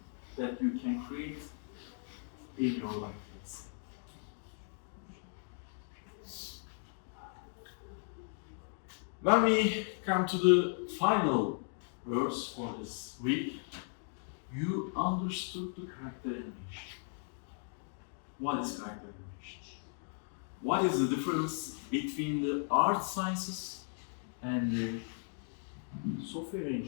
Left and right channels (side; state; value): right; silent; 53 dB below the other